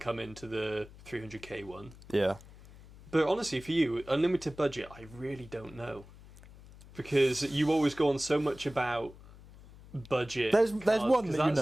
into the 300k one. Yeah. But honestly, for you, unlimited budget, I really don't know, because you always go on so much about budget. There's one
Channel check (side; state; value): left; noise; hum, 20 dB below the sound